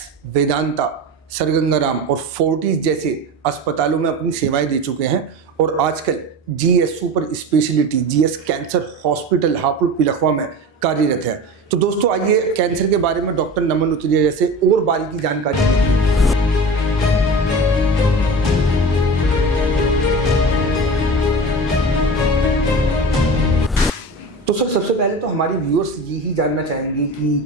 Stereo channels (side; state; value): both; normal; correlation 0.31